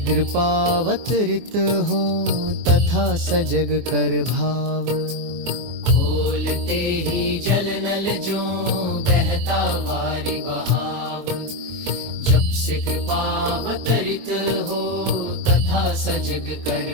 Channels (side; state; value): left; late; 24 ms